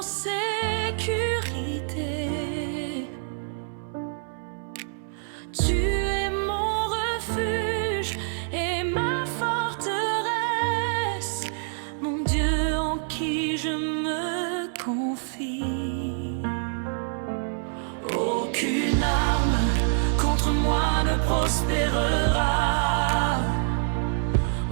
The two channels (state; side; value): silent; left; 59 dB below the other